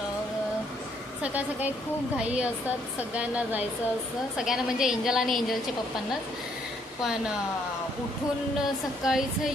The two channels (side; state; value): both; normal; correlation 0.69